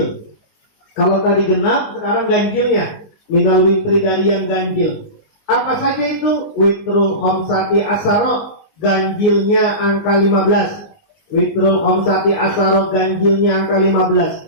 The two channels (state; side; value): late; right; 19 ms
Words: Kalau tadi genap, sekarang ganjilnya. Minal witri, dari yang ganjil. Apa saja itu? Witrul khamsati asaro, ganjilnya angka 15. Witrul khamsati asaro, ganjilnya angka